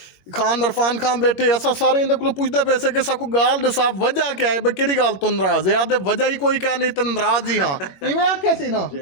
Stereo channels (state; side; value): late; right; 21 ms